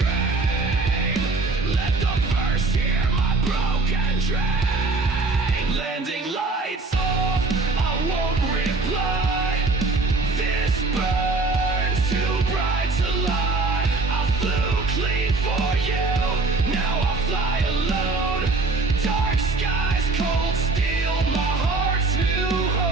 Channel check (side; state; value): left; quieter; 3.5 dB